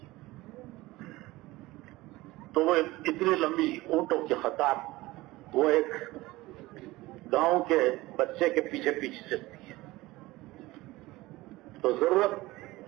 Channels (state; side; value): quieter; left; 19.3 dB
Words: تو وہ اتنی لمبی اونٹوں کی قطار وہ ایک گاؤں کے بچے کے پیچھے پیچھے چلتی ہے۔ تو ضرورت